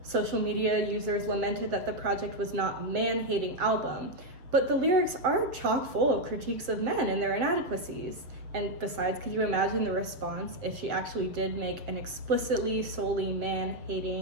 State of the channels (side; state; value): left; late; 7.2 ms